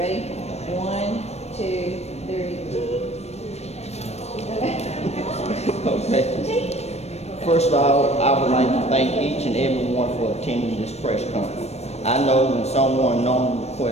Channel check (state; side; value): late; right; 0.31 ms